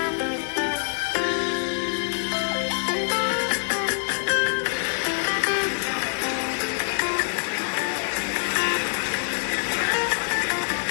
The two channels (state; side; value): silent; right; digital silence